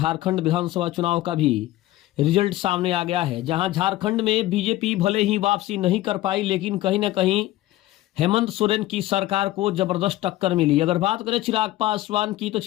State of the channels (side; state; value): right; quieter; 15.9 dB